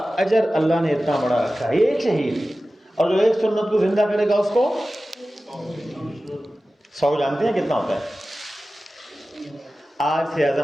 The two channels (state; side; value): normal; both; correlation 0.95